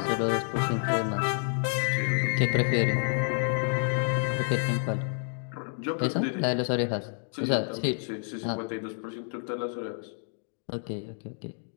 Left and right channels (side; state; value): right; silent; 57 dB below the other